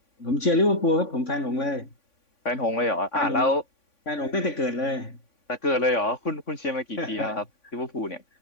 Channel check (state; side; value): late; right; 3.5 ms